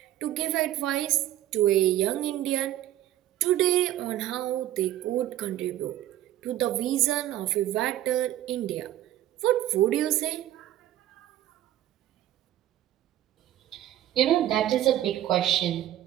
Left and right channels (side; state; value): left; quieter; 13.3 dB